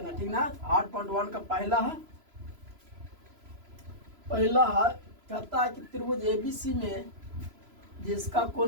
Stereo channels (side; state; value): left; late; 3.0 ms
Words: है, ठीक ना। 8.1 का पहला है। कहता है कि त्रिभुज एबीसी में जिसका